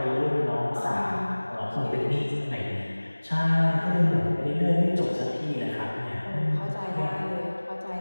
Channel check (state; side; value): inverted; both; correlation -1.00